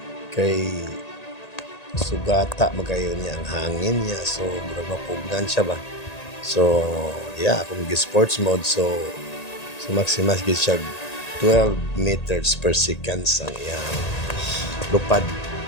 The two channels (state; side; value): late; right; 1.8 ms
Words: kay sugata magayon niya ang hangin niya, so murag mapugnan siya ba. So yeah, akong sports mode, so maximas gid siya 12 meters per second ang iyang lupad.